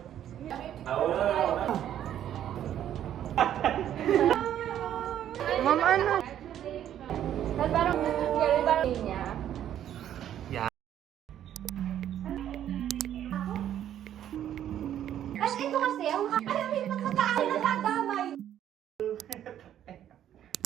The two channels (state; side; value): quieter; left; 10.8 dB